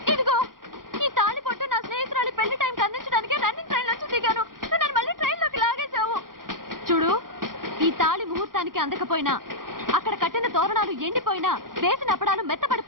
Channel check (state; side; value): late; left; 0.91 ms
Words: ఇదిగో ఈ తాళి పొట్టు నా స్నేహితురాలి పెళ్లి టైంకి అందించడానికి రన్నింగ్ ట్రైన్ నుంచి దిగాను. నన్ను మళ్ళీ ట్రైన్ లోకి లాగేశావు. చూడు, ఈ తాళి ముహూర్తానికి అందకపోయినా, అక్కడ కట్టిన తోరణాలు ఎండిపోయినా, వేసిన అప్పడాలు